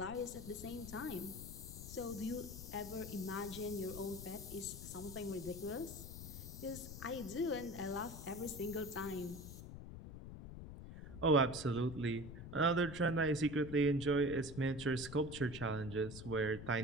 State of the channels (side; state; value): left; noise; rumble, 11 dB below the sound